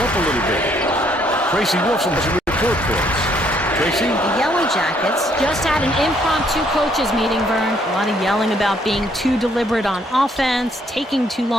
a little bit. Tracy Wilson has a report for us. Tracy? The Yellow Jackets Just had an impromptu coaches meeting, Vern. a lot of yelling about being too deliberate on offense, taking too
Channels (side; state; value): both; normal; correlation 0.68